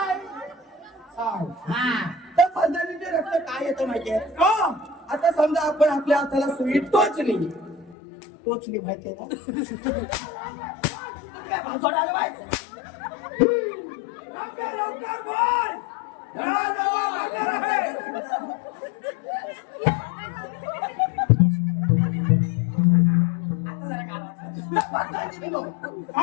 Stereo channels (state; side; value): drops out; right; at 8.0 s